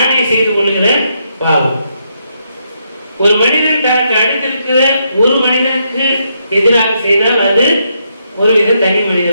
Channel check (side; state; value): both; inverted; correlation -0.78